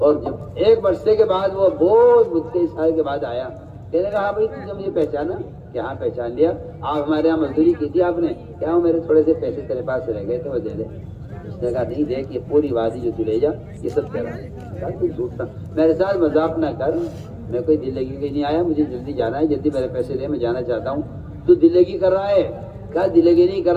جب ایک برسے کے بعد وہ بہت 22 سال کے بعد آیا، کہنے کہا بھائی تم نے مجھے پہچانا؟ کہ ہاں پہچان لیا، آپ ہمارے یہاں مزدوری کی تھی آپ نے، کیا وہ میرے تھوڑے سے پیسے تیرے پاس رہ گئے تھے وہ دے دے۔ اس نے کہا نہیں دیکھ یہ پوری وادی جو تو لے جا یہ سب تیرا ہے۔ کہا تو جھوٹا، میرے ساتھ مذاق نہ کر، میں کوئی دل لگی کے نہیں آیا، مجھے جلدی جانا ہے، جلدی میرے پیسے دے، میں جانا چاہتا ہوں۔ تو دل لگی کر رہا ہے؟ کہا دل لگی نہیں کر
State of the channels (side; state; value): both; identical; correlation 1.00